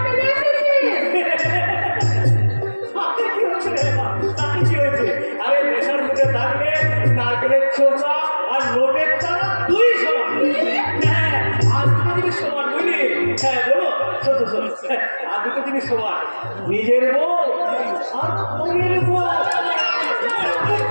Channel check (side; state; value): both; inverted; correlation -1.00